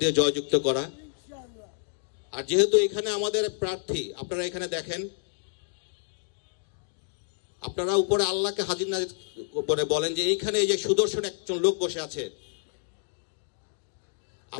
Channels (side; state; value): right; silent; digital silence